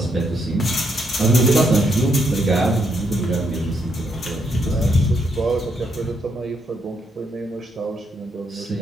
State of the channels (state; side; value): normal; both; correlation 0.76